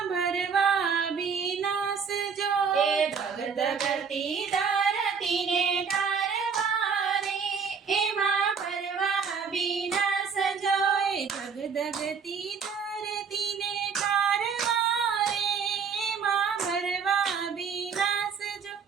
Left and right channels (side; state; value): left; quieter; 6.1 dB